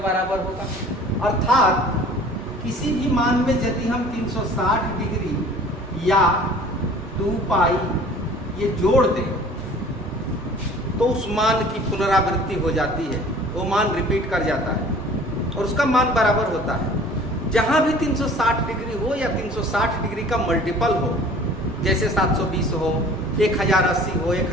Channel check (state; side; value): normal; both; correlation 0.48